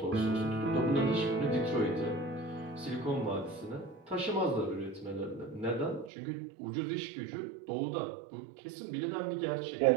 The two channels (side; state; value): left; drops out; at 6.1 s